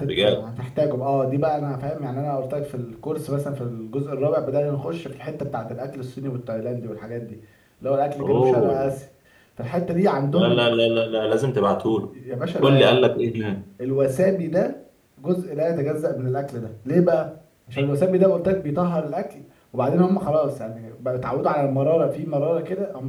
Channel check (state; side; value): identical; both; correlation 1.00